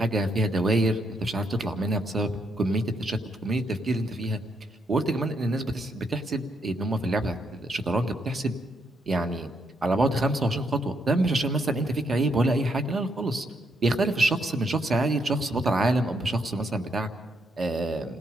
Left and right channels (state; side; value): normal; both; correlation 0.77